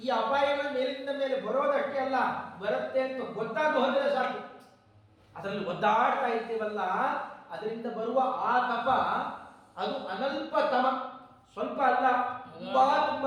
ಈ ಅಪಾಯಗಳು ಮೇಲಿಂದ ಮೇಲೆ ಬರೋದಷ್ಟೇ ಅಲ್ಲ, ಬರುತ್ತೆ ಅಂತ ಗೊತ್ತಾಗ ಹೋದರೆ ಸಾಕು. ಅದರಲ್ಲಿ ಒದ್ದಾಡ್ತಾ ಇರ್ತೀವಲ್ಲ, ಅದರಿಂದ ಬರುವ ಆತಪ ಅದು ಅನಲ್ಪ ತಮ, ಸ್ವಲ್ಪ ಅಲ್ಲ,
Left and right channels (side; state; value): both; identical; correlation 1.00